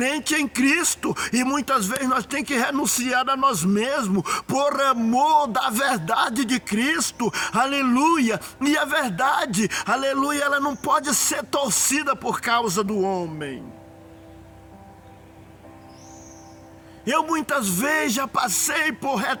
em Cristo, e muitas vezes nós tem que renunciar a nós mesmos, por amor da verdade de Cristo, aleluia. E a verdade, aleluia, ela não pode ser torcida por causa do homem. Eu muitas vezes já passei por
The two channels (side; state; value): both; identical; correlation 1.00